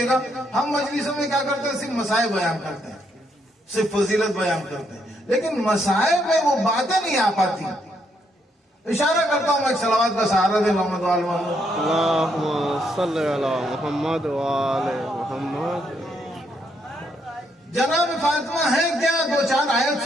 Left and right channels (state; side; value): normal; both; correlation 0.75